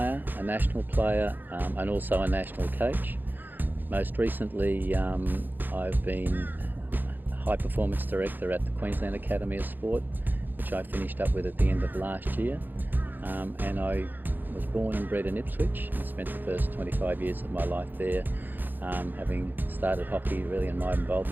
a national player, and also a national coach. Most recently I've been a high performance director at the Queensland Academy of Sport, which I finished up with at the end of last year. And I was born and bred in Ipswich and spent the first 25 years of my life there, having started hockey really in my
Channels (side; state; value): left; late; 0.089 ms